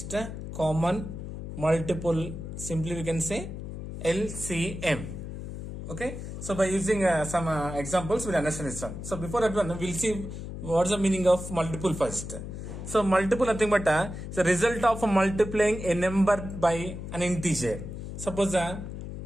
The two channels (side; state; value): left; noise; hum, 8 dB below the sound